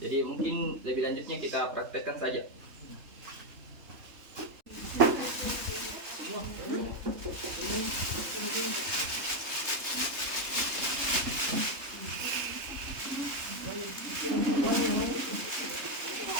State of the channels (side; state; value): left; late; 3.3 ms